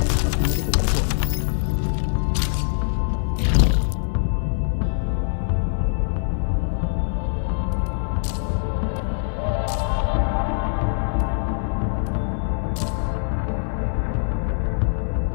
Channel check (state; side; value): silent; right; 62 dB below the other